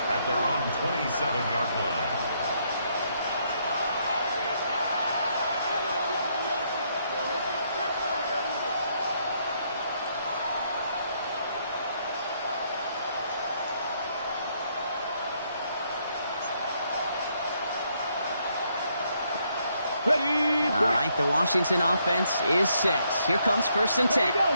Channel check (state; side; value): inverted; both; correlation -0.73